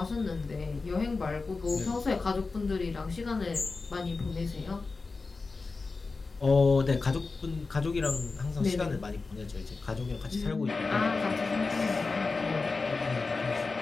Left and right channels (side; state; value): right; quieter; 4.0 dB